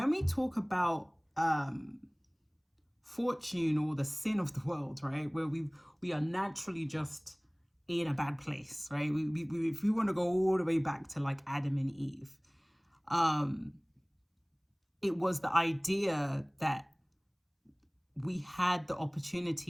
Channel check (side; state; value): both; identical; correlation 1.00